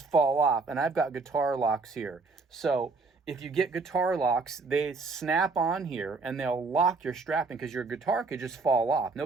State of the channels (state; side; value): quieter; left; 4.0 dB